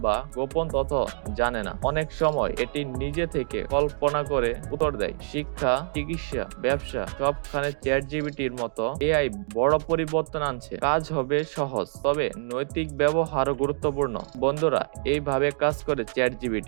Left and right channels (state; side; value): silent; left; 61 dB below the other